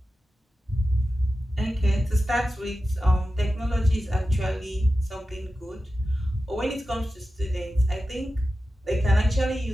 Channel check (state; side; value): normal; both; correlation 0.93